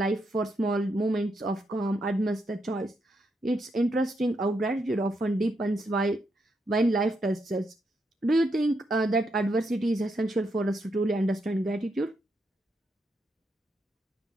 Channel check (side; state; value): both; normal; correlation 0.80